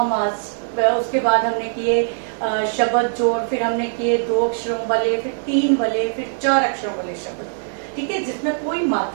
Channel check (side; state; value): left; silent; digital silence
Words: आज उसके बाद हमने किए शब्द जोड़, फिर हमने किए 2 अक्षरों वाले, फिर 3 वाले, फिर 4 अक्षरों वाले शब्द। ठीक है, जिसमें कोई